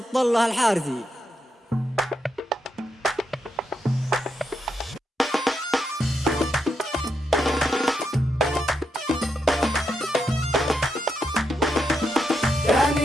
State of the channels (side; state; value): both; normal; correlation 0.82